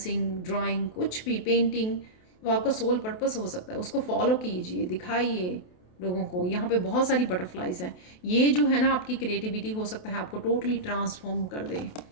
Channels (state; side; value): late; right; 28 ms